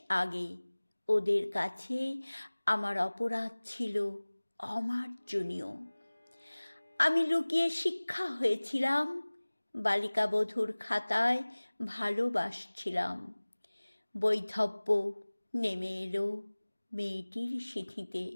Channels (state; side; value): inverted; both; correlation -1.00